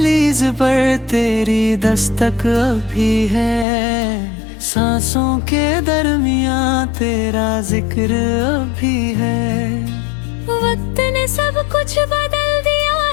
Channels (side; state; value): right; drops out; at 3.7 s